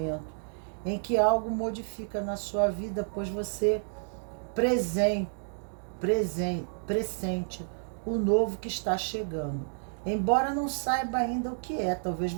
em que algo modifica na sua vida, pois você pressente o novo que está chegando. Embora não saiba ainda o que é, talvez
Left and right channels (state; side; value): silent; left; digital silence